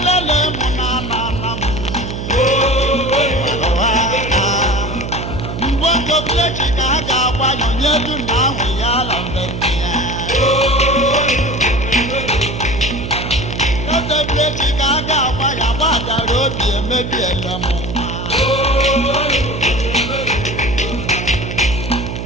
munana. Mbongo blechi kaga wanyo nyedu na wiyala bendia. Kote blechi kaga waya wada robi emebi elamo.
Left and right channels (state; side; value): noise; right; hum, 6 dB below the sound